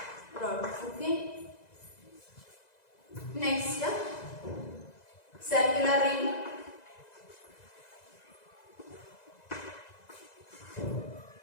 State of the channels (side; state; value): right; late; 2.0 ms